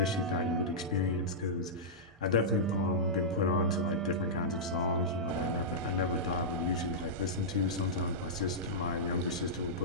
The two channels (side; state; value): both; normal; correlation -0.12